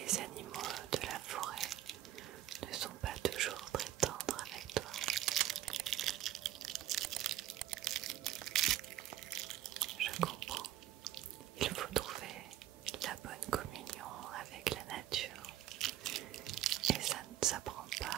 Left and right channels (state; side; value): quieter; left; 13.2 dB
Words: animaux de la forêt ne sont pas toujours très tendres avec toi. Je comprends. Il faut trouver la bonne communion avec la nature et ça ne s'apprend